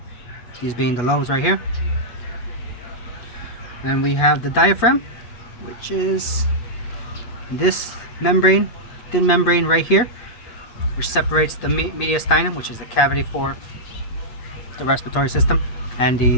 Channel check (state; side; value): late; right; 8.2 ms